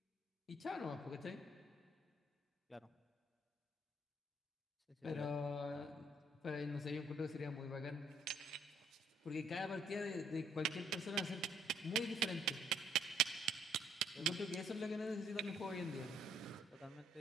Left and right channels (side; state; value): both; normal; correlation 0.66